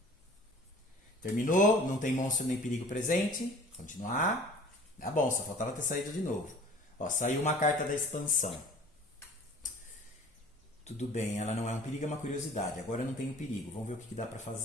Terminou, não tem monstro nem perigo presente. Continuar. Tá bom, só faltava ter saído de novo. Ó, saiu uma carta da expansão. Tudo bem, ela não é um perigo, é uma curiosidade. Agora eu não tenho perigo. Vamos ver o que dá para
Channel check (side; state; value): both; normal; correlation 0.46